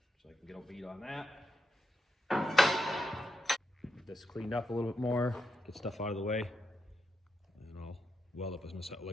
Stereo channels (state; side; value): normal; both; correlation 0.85